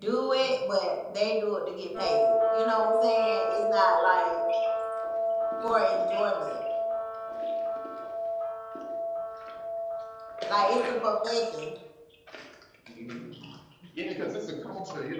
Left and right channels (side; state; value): both; identical; correlation 1.00